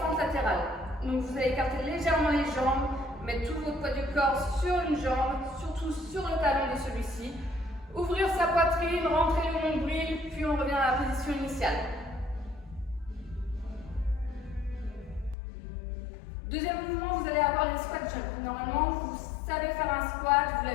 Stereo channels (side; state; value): right; drops out; at 15.4 s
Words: latérales. Donc vous allez écarter légèrement les jambes, mettre tout votre poids du corps sur une jambe, surtout sur le talon de celui-ci. Ouvrir sa poitrine, rentrer le nombril, puis on revient à la position initiale. Deuxième mouvement, vous allez avoir les squat jumps. Normalement, vous savez faire un squat, vous